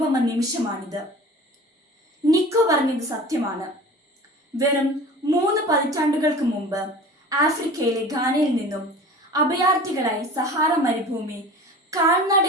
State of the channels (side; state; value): both; normal; correlation 0.40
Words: നിമിഷമാണിത്. നിക്കോ പറഞ്ഞത് സത്യമാണ്. വെറും 3 പതിറ്റാണ്ടുകൾക്ക് മുമ്പ് ആഫ്രിക്കയിലെ ഘാനയിൽ നിന്നും അഭയാർത്ഥികളായി സഹാറ മരുഭൂമി